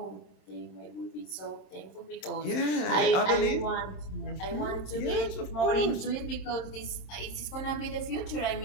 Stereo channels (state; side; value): late; right; 27 ms